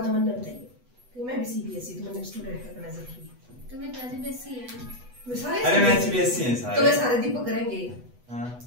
तो मैंने बताइए कि मैं भी सीबीएसई तो मैंने स्टूडेंट का करना सीखी। तो मैं सीबीएसई है, वे सारे अरे मैं सीबीएसई है सारे, तो वे सारे दीपक करेंगे। हां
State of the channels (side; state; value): left; late; 8.1 ms